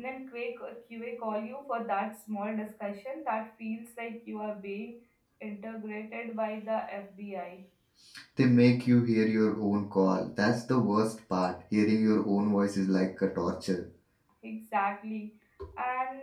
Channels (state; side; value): identical; both; correlation 1.00